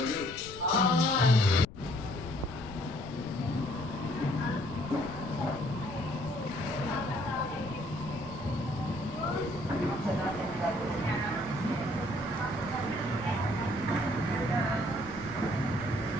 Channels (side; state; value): left; noise; rumble, 15 dB below the sound